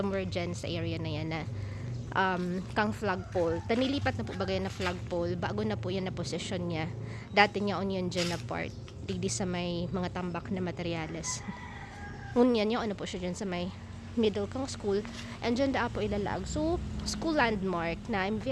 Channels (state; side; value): identical; both; correlation 1.00